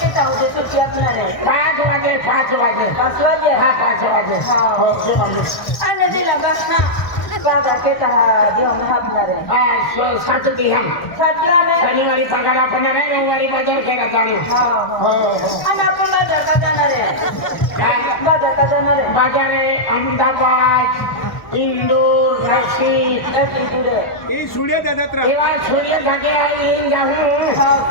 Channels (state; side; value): late; right; 1.1 ms